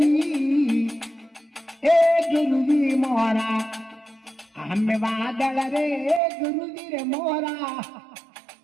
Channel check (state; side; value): drops out; left; at 6.2 s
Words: ए गुरुजी मोरा आम बादल रे गुरुजी रे मोरा